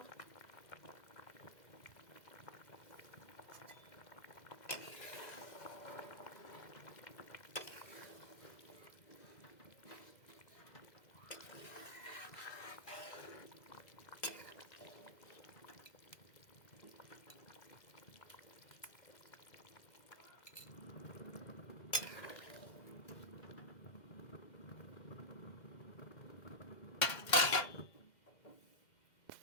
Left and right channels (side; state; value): right; late; 2.0 ms